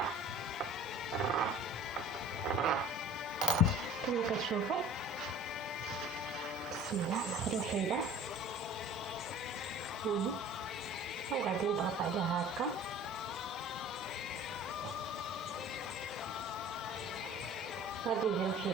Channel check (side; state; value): both; normal; correlation 0.44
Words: كما كتشوفوا. بسم الله، ناخذ وحيده وغادي نضغط عليها هكا. غادي ندير